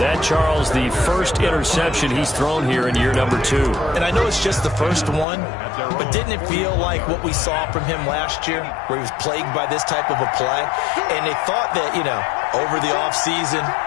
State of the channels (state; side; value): drops out; right; at 5.2 s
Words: Charles, the first interception he's thrown here in year number 2. And I know it's just the first one, but didn't it feel like what we saw from him last year, where he was plagued by this type of a play? And they thought that, you know, over the offseason,